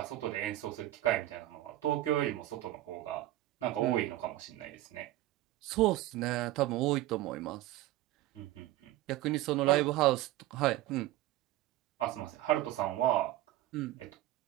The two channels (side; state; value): left; quieter; 15.7 dB